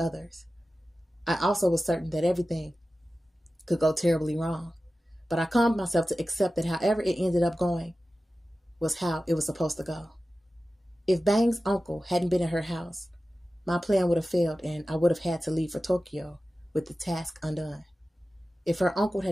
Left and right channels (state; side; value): normal; both; correlation 0.95